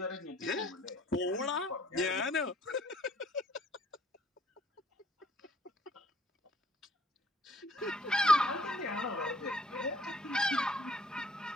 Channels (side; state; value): both; normal; correlation 0.61